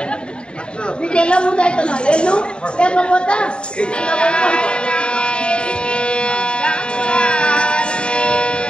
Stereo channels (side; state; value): right; late; 0.052 ms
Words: నీకు ఎలా ముందు అవుతున్నావు వెళ్ళు, లేకపోతే